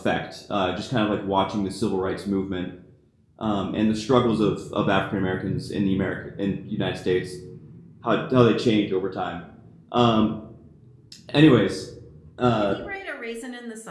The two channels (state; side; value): identical; both; correlation 1.00